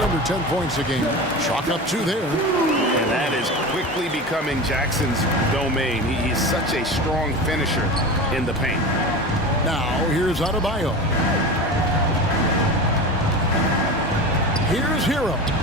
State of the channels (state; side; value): normal; both; correlation 0.29